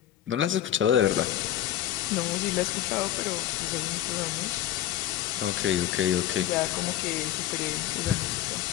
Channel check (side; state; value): right; quieter; 12.2 dB